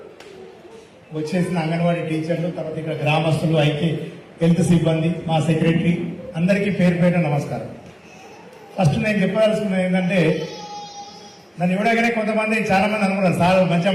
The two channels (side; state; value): both; identical; correlation 1.00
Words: వచ్చేసిన అంగన్వాడీ టీచర్లు, తర్వాత ఇక్కడ గ్రామస్తులు, అయితే హెల్త్ సిబ్బంది, మా సెక్రటరీ అందరికీ పేరు పేరు నమస్కారం. ఫస్ట్ నేను చెప్పదలుచుకున్నది ఏంటంటే, నన్ను ఇవ్వడగానే కొంతమంది చాలా మంది అనుకున్నారు సార్ మంచిగా